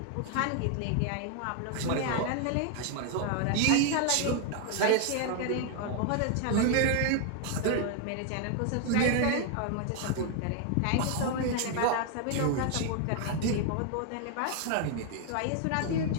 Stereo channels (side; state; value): both; different; correlation 0.00